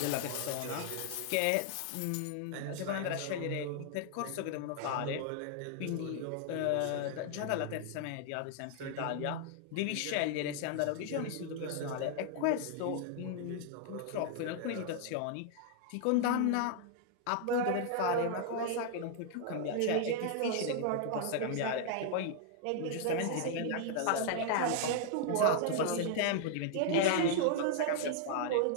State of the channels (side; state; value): both; different; correlation 0.00